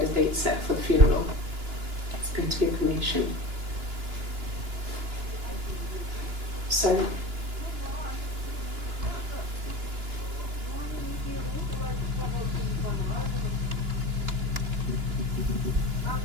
a date set for the funeral. It's going to be a cremation. So,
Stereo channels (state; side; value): late; left; 2.9 ms